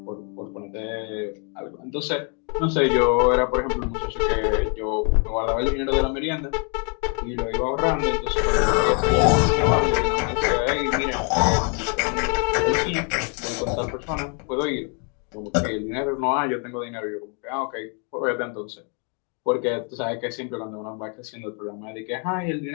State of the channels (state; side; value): quieter; right; 38.7 dB